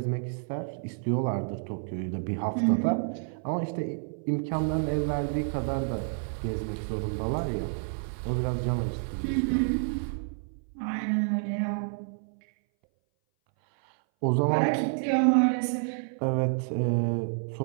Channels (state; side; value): silent; left; 59 dB below the other